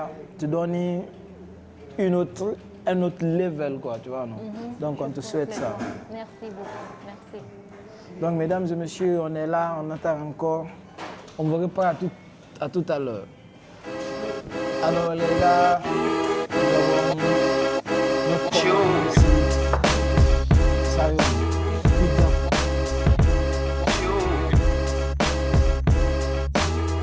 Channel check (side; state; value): both; identical; correlation 1.00